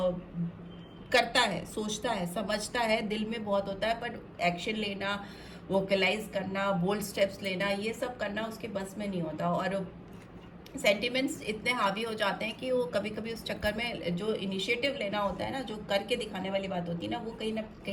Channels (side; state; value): both; identical; correlation 1.00